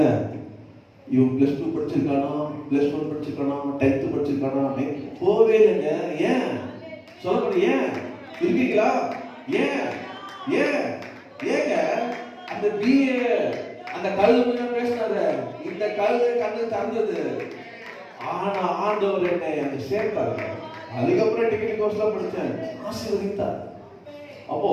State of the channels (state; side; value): identical; both; correlation 1.00